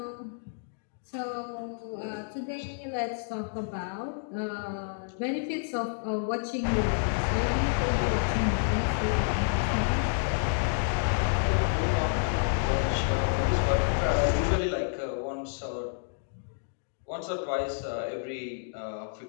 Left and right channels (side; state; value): right; silent; digital silence